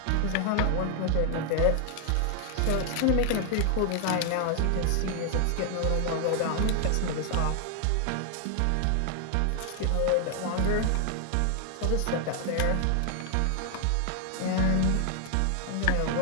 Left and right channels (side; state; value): both; different; correlation 0.00